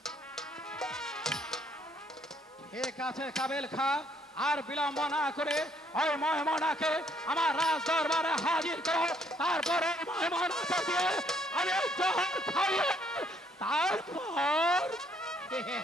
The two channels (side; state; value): both; normal; correlation 0.67